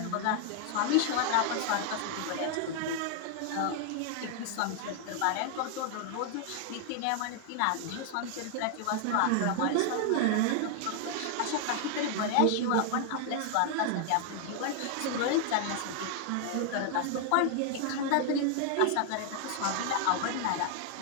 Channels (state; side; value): different; both; correlation 0.00